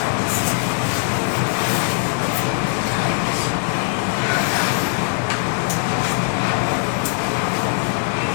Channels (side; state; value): right; silent; digital silence